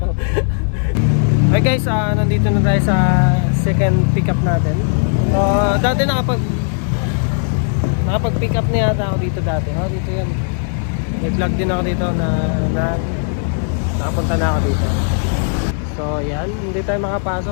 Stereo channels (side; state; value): right; silent; digital silence